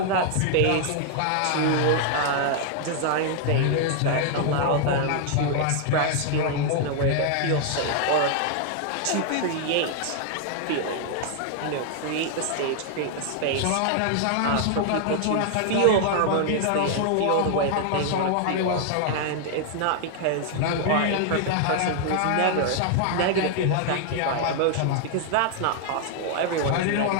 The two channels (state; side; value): different; both; correlation 0.00